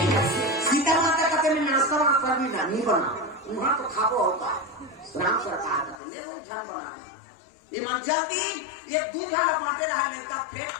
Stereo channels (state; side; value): drops out; right; at 6.0 s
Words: सीता माता कहते मैं नाश्ता वास्ता भी नहीं बना वहां तो खाबो होता राम सरकार कहते ले लो ध्यान बना ये मन जल्दी ये 2 जन बांटे रहा लेता